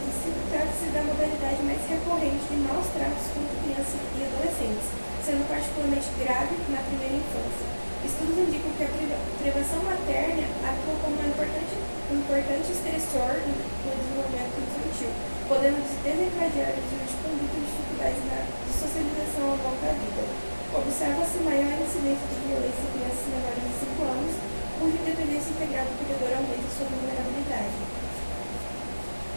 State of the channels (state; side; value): inverted; both; correlation -1.00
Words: e Silva, trata-se da modalidade mais recorrente de maus tratos contra crianças e adolescentes, sendo particularmente grave na primeira infância. Estudos indicam que a privação materna atua como um importante estressor no desenvolvimento infantil, podendo desencadear o uso de conduta e dificuldades de socialização ao longo da vida. Observa-se maior incidência de violência em crianças menores de 5 anos, cuja dependência integral do cuidador aumenta sua vulnerabilidade.